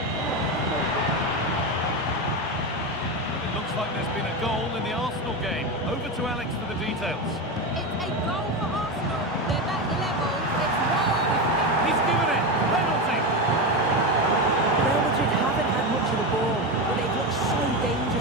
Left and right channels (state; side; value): normal; both; correlation 0.17